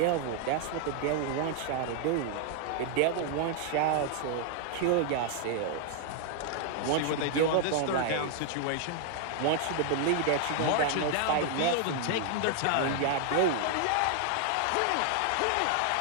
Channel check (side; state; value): both; different; correlation 0.00